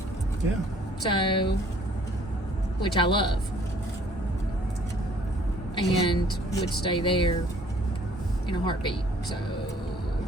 Yeah. So, which I love, and would stay there in a heartbeat. So,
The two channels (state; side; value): normal; both; correlation 0.58